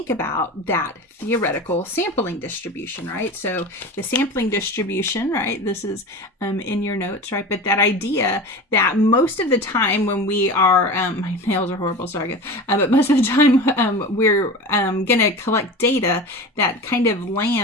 about that theoretical sampling distribution, right? So the sampling distribution, right? This is in your notes, right? But that idea that most of the time when we are, my nails are horrible, sorry guys, but most of the time we're going to collect data that kind of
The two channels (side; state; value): both; normal; correlation 0.31